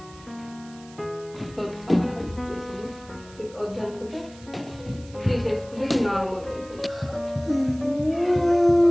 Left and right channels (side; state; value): right; noise; hiss, 23 dB below the sound